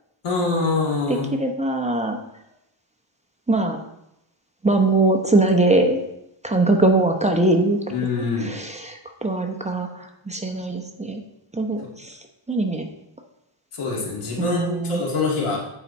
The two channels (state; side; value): normal; both; correlation 0.31